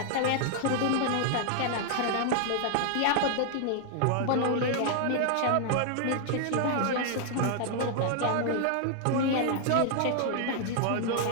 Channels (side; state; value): both; different; correlation 0.00